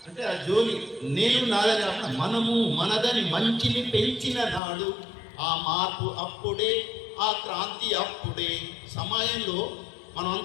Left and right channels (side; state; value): right; drops out; at 4.6 s